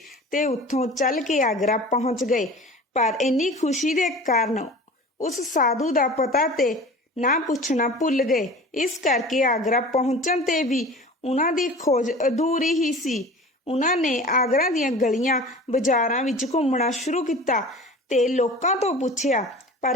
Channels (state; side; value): normal; both; correlation 0.39